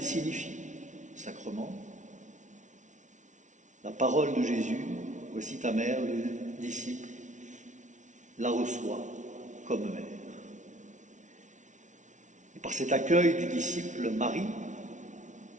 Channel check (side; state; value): left; late; 0.36 ms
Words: signifie, sacrement. La parole de Jésus, voici ta mère, le disciple, la reçoit comme mère. Et par cet accueil du disciple Marie,